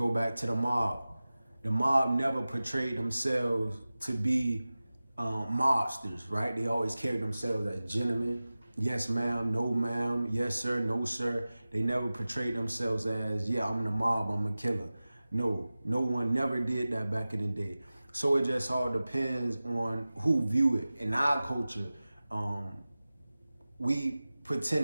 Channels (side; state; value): both; inverted; correlation -0.97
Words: back to the mob. the mob never portrayed themselves to be mobsters, right? They always carried themselves as gentlemen. Yes, ma'am, no, ma'am, yes, sir, no, sir. They never portrayed themselves as, yeah, I'm the mob, I'm a killer. No, no one never did that back in the day. So it just all depends on who view it. In our culture, we